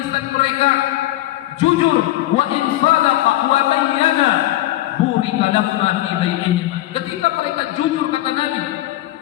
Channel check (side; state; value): right; quieter; 15.6 dB